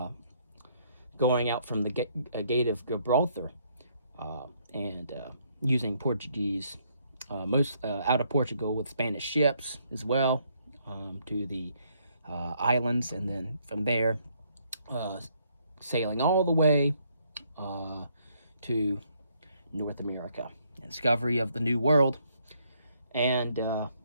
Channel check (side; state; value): both; inverted; correlation -0.70